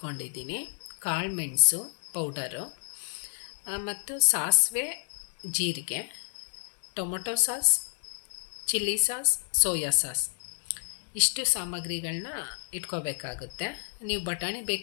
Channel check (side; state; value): right; silent; 58 dB below the other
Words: ಕಾಳು ಮೆಣಸು ಪೌಡರು ಮತ್ತು ಸಾಸಿವೆ, ಜೀರಿಗೆ, tomato sauce, chilli sauce, soya sauce, ಇಷ್ಟು ಸಾಮಗ್ರಿಗಳನ್ನ ಇಟ್ಕೋಬೇಕಾಗುತ್ತೆ. ನೀವು ಬಟಾಣಿ